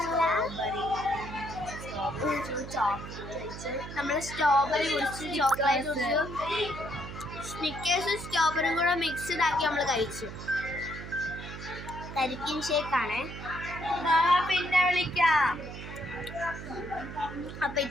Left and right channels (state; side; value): noise; right; hum, 10 dB below the sound